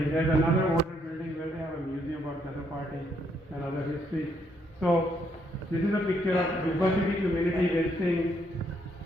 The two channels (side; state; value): both; normal; correlation 0.73